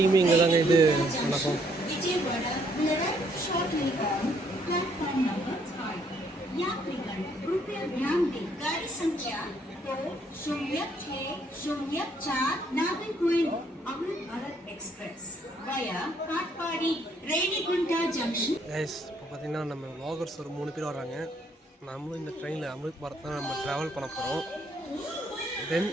இங்கே தாங்க இது நடக்கும். गाड़ी संख्या 2064 Nagercoil Amrit Bharat express via Katpadi Renigunta junction. Guys, இப்போ பார்த்தீங்கன்னா நம்ம vloggers ஒரு 3 பேர் வராங்க. நம்மளும் இந்த ட்ரெயினில் அமிர்த் பாரத் தான் நம்ம ட்ராவல் பண்ண போகிறோம். தென்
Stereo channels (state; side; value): normal; both; correlation 0.68